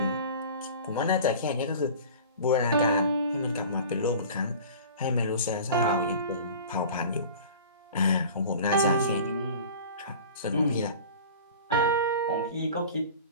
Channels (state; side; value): inverted; both; correlation -0.40